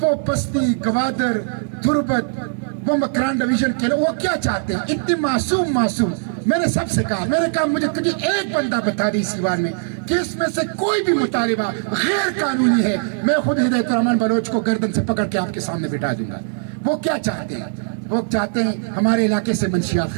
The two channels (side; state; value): left; silent; 66 dB below the other